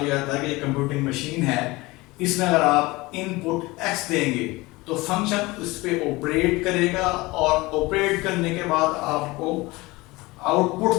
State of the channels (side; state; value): right; quieter; 21.9 dB